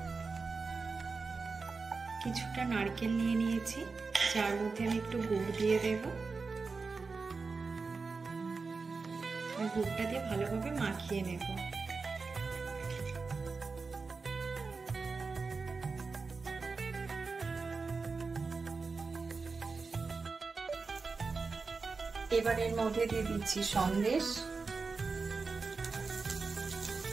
কিছুটা নারকেল নিয়ে নিয়েছি, যার মধ্যে আমি একটু গুড় দিয়ে দেব। আর গুড়টা দিয়ে ভালোভাবে মাখিয়ে নেব। এবার এর মধ্যে দিয়ে দিচ্ছি সন্দেশ।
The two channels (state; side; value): quieter; left; 4.4 dB